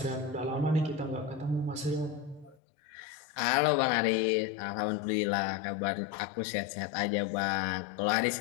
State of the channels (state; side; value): drops out; right; at 2.6 s